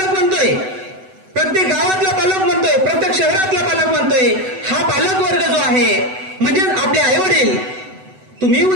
म्हणतोय, प्रत्येक गावातला पालक म्हणतोय, प्रत्येक शहरातला पालक म्हणतोय, हा पालक वर्ग जो आहे म्हणजे आपले आई वडील, तुम्ही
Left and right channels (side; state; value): left; late; 7.9 ms